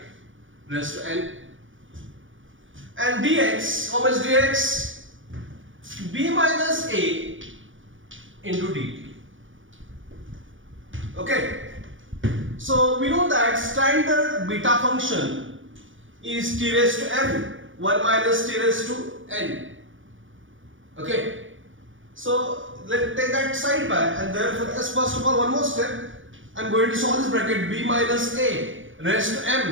raised to n. And dx, how much dx? B minus a into dt. Okay. So we know that standard beta function is t raised to m, 1 minus t raised to n. Okay. So let's take that side by, and therefore as first of all one more step, I am going to solve this bracket b minus a raised to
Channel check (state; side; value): late; left; 0.57 ms